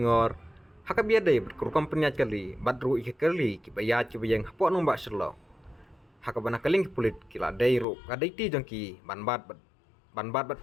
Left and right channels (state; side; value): drops out; right; at 7.9 s